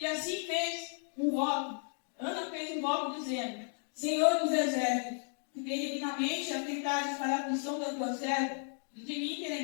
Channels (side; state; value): right; silent; 55 dB below the other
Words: assim fez um voto. Ana fez um voto dizendo: Senhor dos exércitos, que benignamente atentares para a aflição da tua serva, de mim te